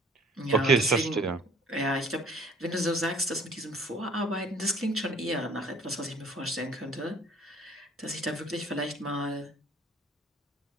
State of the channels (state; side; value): normal; both; correlation 0.55